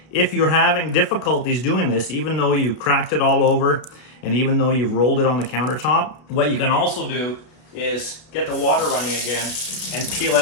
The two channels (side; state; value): right; late; 32 ms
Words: If you're having difficulties doing this, even though you cracked it all over, and even though you've rolled it on the countertop, what you can also do is get the water running again and peel